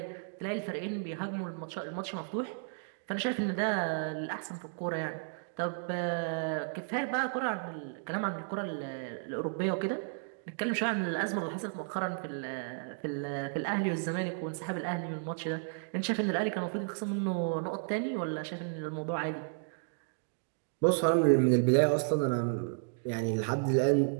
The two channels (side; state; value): left; silent; digital silence